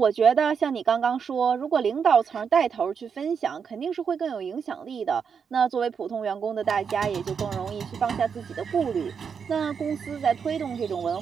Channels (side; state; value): left; quieter; 6.6 dB